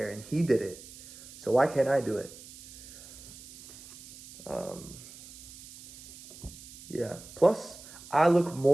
and he did it. So why can't I do it? Yeah. Plus, I look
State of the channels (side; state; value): right; noise; hiss, 17 dB below the sound